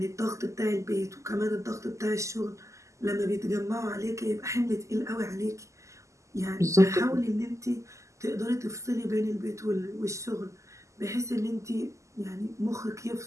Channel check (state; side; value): late; left; 0.15 ms